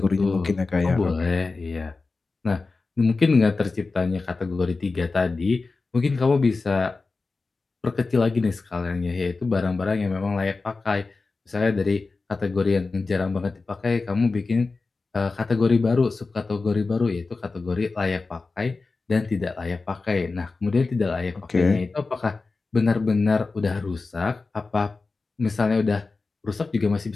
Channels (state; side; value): quieter; right; 3.9 dB